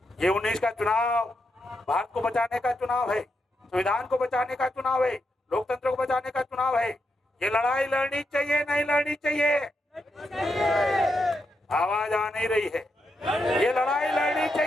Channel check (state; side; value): normal; both; correlation 0.83